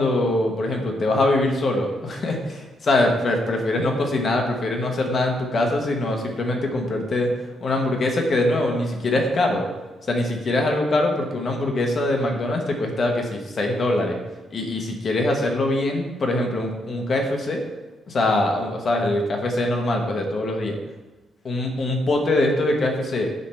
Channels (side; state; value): both; normal; correlation 0.77